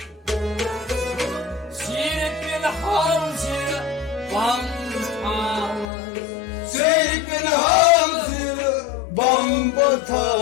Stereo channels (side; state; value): right; drops out; at 5.9 s